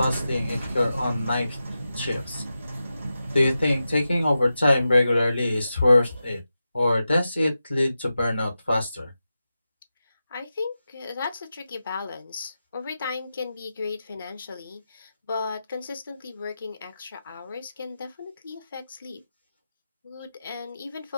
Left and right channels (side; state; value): both; inverted; correlation -0.91